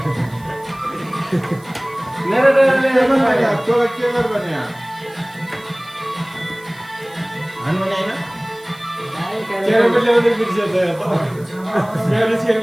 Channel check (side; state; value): right; noise; hiss, 26 dB below the sound